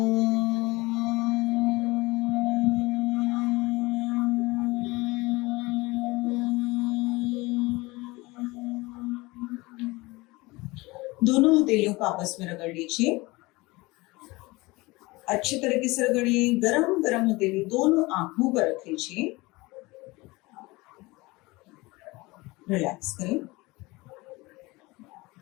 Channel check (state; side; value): quieter; right; 22.5 dB